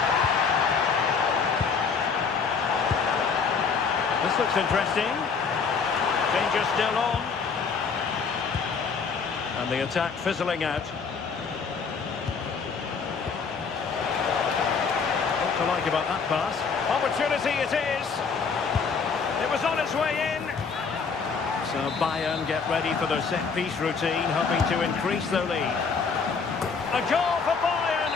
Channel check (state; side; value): quieter; right; 5.5 dB